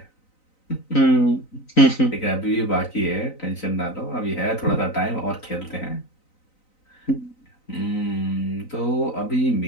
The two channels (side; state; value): right; late; 3.9 ms